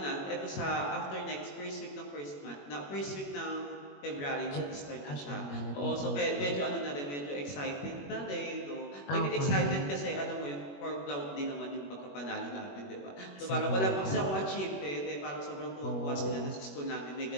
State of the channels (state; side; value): late; right; 21 ms